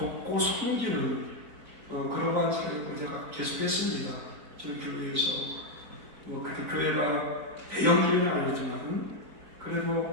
섬기는 그러한 사역을 제가 계속했습니다. 저희 교회에서 그때 교회가 대형교회는 아니지만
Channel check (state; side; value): late; left; 3.9 ms